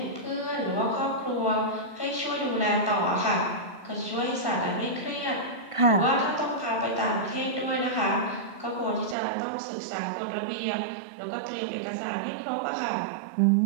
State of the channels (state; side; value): drops out; left; at 9.2 s